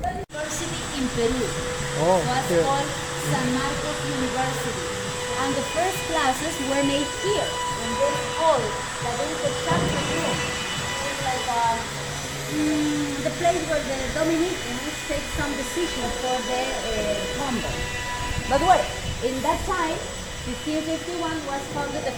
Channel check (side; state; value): both; identical; correlation 1.00